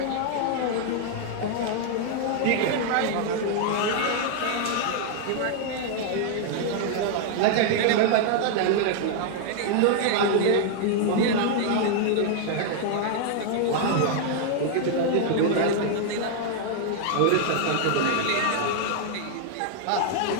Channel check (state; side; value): different; both; correlation 0.00